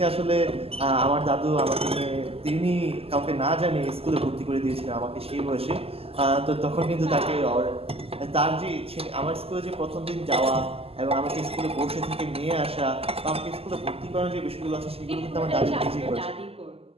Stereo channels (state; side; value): late; left; 0.28 ms